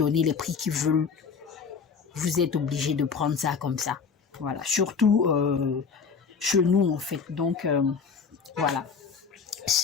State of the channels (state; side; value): quieter; right; 5.7 dB